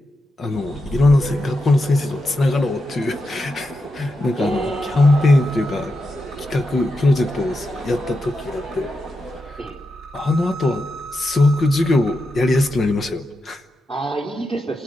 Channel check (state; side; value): normal; both; correlation 0.87